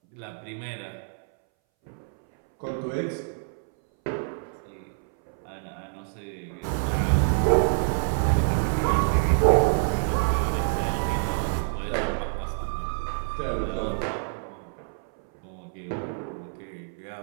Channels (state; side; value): silent; left; 60 dB below the other